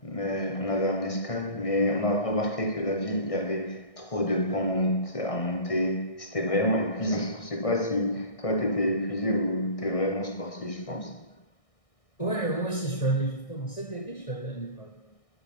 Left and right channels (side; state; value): right; late; 1.6 ms